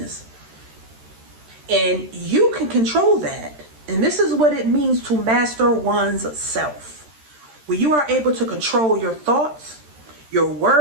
And you can control that. And this is what it means to master one's self. When you are able to control your thoughts, your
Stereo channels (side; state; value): left; late; 13 ms